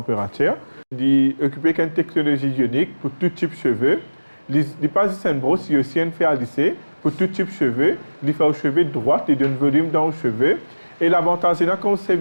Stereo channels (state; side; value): inverted; both; correlation -1.00